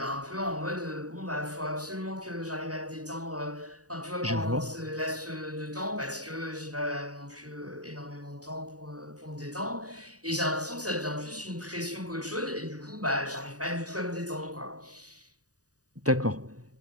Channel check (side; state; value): left; late; 0.67 ms